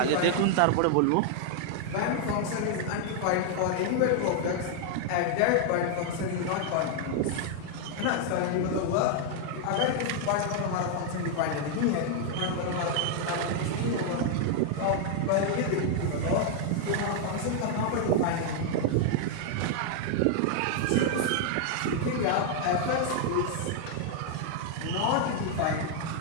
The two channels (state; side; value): different; both; correlation 0.00